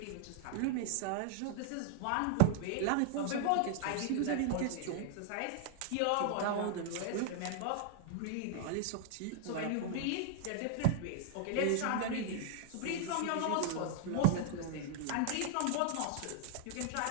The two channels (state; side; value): different; both; correlation 0.00